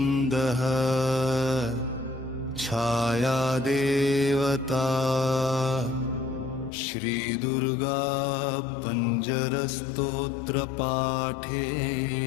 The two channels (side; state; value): right; drops out; at 6.7 s